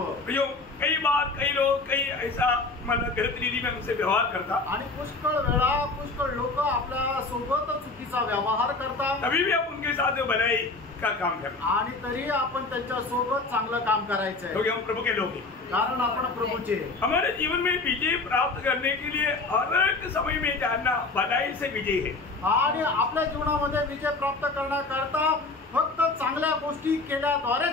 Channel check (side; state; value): right; quieter; 3.6 dB